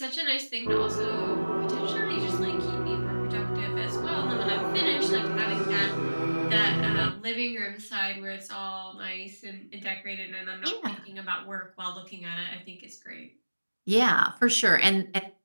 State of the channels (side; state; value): both; inverted; correlation -1.00